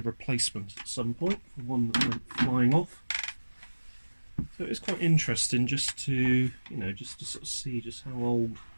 replacement at some point for one that went flying off. So it's quite interesting just to, you know, just to sort of see just how old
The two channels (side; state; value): both; inverted; correlation -1.00